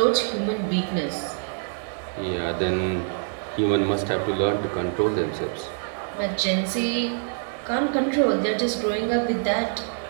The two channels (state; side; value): silent; left; digital silence